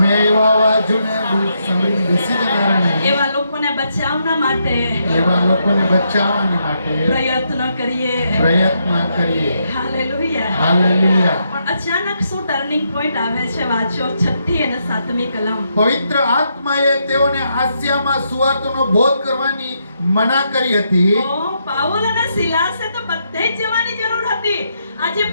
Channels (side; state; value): both; inverted; correlation -0.79